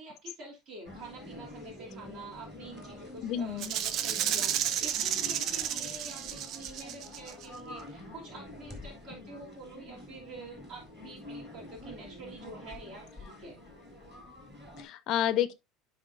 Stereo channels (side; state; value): both; normal; correlation 0.36